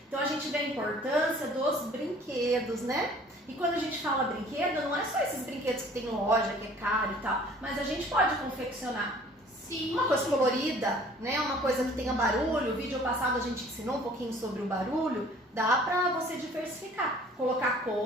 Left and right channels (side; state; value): both; normal; correlation 0.52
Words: Então a gente vê a importância dos brinquedos, né? E quando a gente fala brinquedo, não é só esses brinquedos que tem loja, que é caro e tal, mas a gente pode confeccionar. Sim. Uma coisa colorida, né? Uma coisa que tenha barulho. O vídeo passado a gente ensinou um pouquinho sobre o barulho. Dá pra você diversificar, colocar